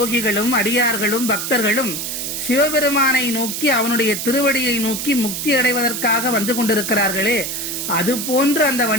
அடியார்களும் பக்தர்களும் சிவபெருமானை நோக்கி அவனுடைய திருவடியை நோக்கி முக்தி அடைவதற்காக வந்து கொண்டிருக்கிறார்களே, அது போன்று அந்த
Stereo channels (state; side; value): noise; right; hiss, 4 dB below the sound